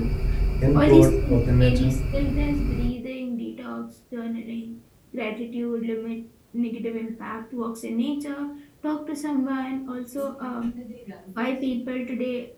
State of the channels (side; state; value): both; identical; correlation 1.00